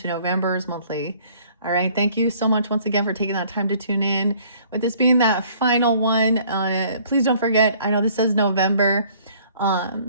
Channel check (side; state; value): both; inverted; correlation -0.58